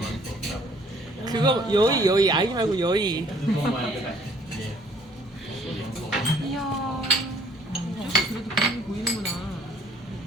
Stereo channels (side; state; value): both; normal; correlation 0.59